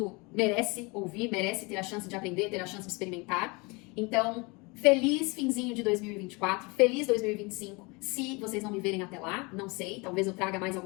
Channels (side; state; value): right; quieter; 27.5 dB